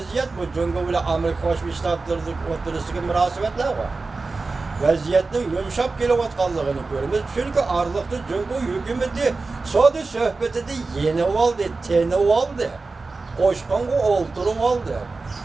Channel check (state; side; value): quieter; left; 3.8 dB